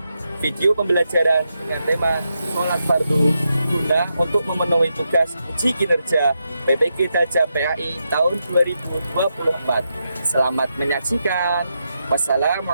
video pembelajaran dengan tema sholat fardu guna untuk memenuhi tugas uji kinerja PPG Daja PAI tahun 2024. Selamat menyaksikan.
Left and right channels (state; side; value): inverted; both; correlation -0.84